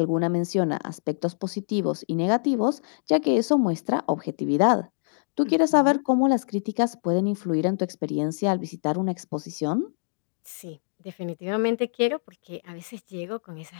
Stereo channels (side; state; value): right; silent; digital silence